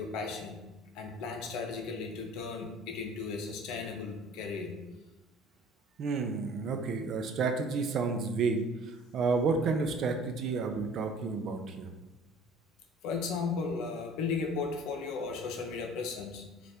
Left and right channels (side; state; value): both; normal; correlation 0.48